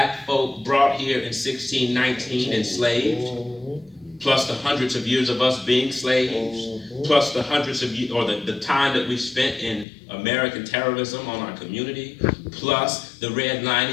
folk brought here in 1619 enslaved, plus the hundreds of years of us being slaves, plus the hundreds of years, or the time that we spent in American terrorism on our community, plus the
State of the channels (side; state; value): right; drops out; at 9.9 s